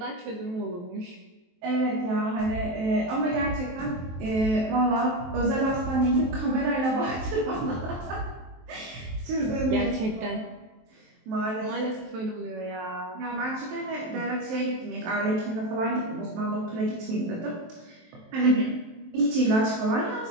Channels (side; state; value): left; late; 23 ms